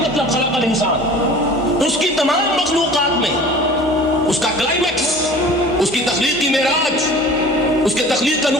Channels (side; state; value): both; normal; correlation 0.43